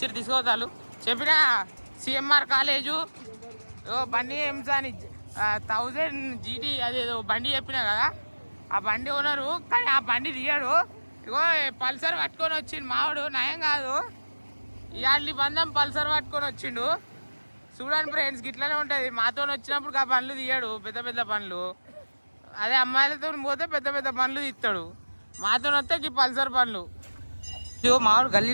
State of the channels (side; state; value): both; inverted; correlation -1.00